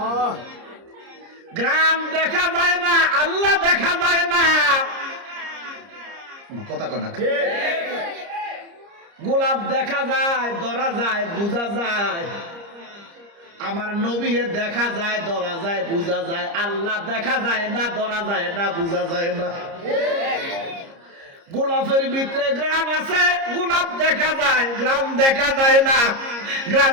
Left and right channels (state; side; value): late; left; 30 ms